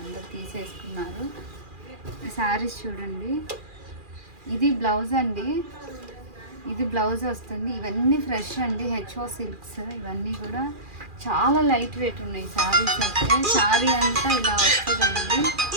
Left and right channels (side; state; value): left; late; 2.4 ms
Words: తీసేసుకున్నారు. ఈ శారీస్ చూడండి, ఇది బ్లౌజ్ అండి. ఇది బ్లౌజ్ వస్తుంది. ఇవన్నీ ఫ్రెష్ అండి, హెచ్ఓ సిల్క్స్. ఇవన్నీ కూడా చాలా లైట్ వెయిట్ ఉన్నాయి శారీస్ అయితే. శారీ అంతా ఇలా వస్తుందండి.